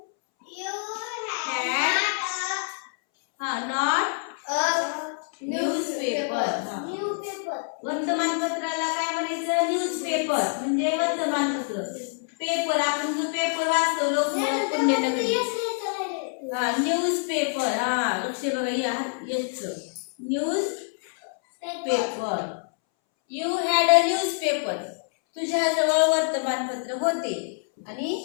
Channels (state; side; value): silent; right; 61 dB below the other